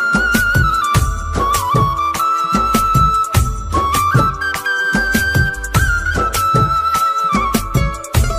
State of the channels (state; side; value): identical; both; correlation 1.00